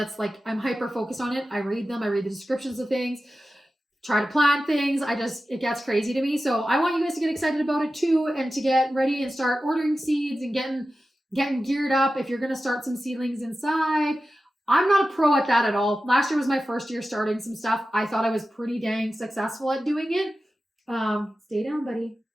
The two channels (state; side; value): normal; both; correlation 0.94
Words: hyper focused on it. I read them. I read the descriptions of things, try to plant things. It gets crazy to me. So I want you guys to get excited about it too and to get ready and start ordering seeds and getting geared up. If you're going to start some seedlings inside, I'm not a pro at that at all. Last year was my first year starting some stuff. I thought I was pretty dang successful at doing it. Stay down, buddy.